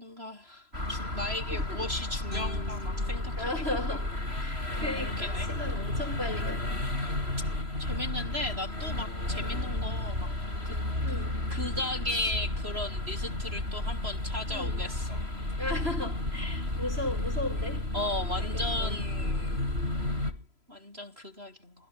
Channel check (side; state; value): left; late; 3.0 ms